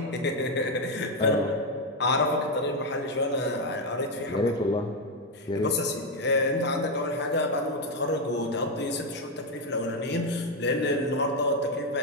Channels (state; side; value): normal; both; correlation 0.05